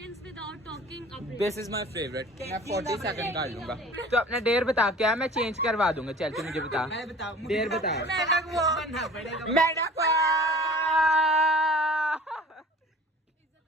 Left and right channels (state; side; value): normal; both; correlation 0.45